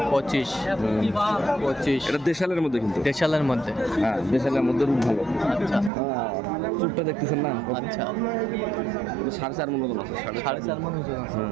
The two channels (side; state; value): left; drops out; at 5.9 s